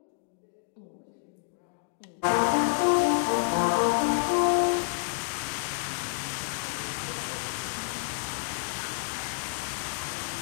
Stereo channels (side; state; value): right; silent; digital silence